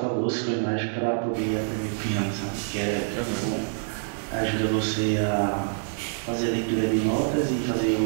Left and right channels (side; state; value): left; silent; digital silence